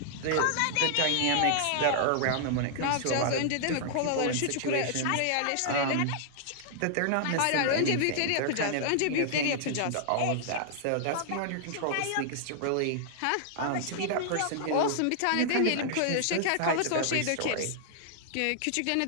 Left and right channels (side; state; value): both; different; correlation -0.01